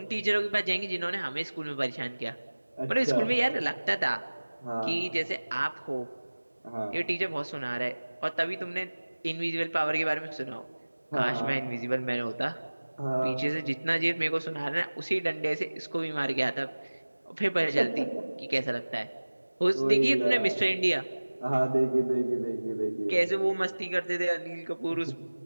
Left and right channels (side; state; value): both; inverted; correlation -1.00